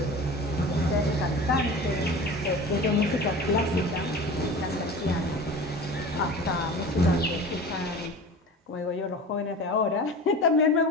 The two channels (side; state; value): both; normal; correlation 0.35